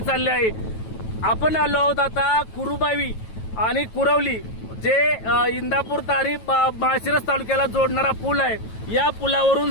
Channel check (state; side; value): late; right; 9.2 ms